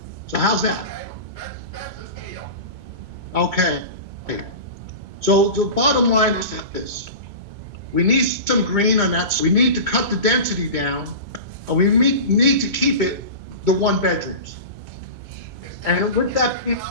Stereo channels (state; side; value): late; left; 2.2 ms